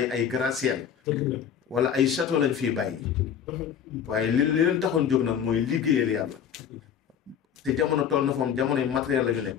ay gratte-ciel wala ay château lañ fiy bàyyi waaye li leen taxoon jóg nag mooy liggéeyal yàlla te jamono toll na foom jamono yi matériel la ñu nekk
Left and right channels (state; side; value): quieter; right; 8.4 dB